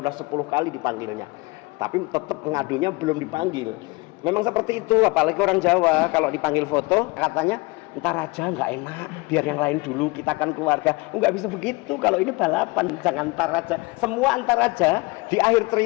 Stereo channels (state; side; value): quieter; right; 25.2 dB